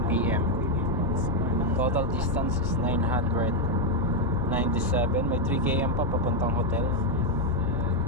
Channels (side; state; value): both; normal; correlation 0.02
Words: PM. Total distance is 997. May 3 km pa papuntang hotel.